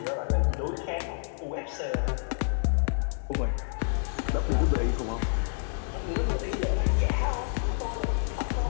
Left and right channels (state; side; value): silent; right; 59 dB below the other